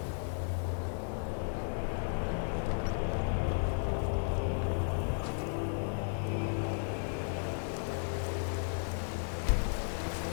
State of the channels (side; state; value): right; silent; digital silence